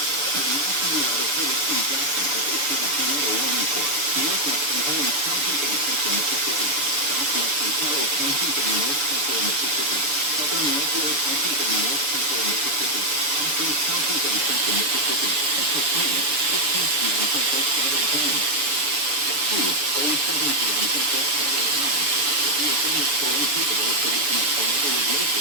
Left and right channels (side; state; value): left; late; 6.8 ms